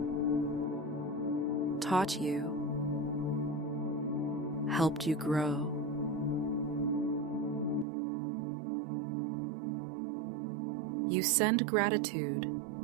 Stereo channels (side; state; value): left; drops out; at 7.9 s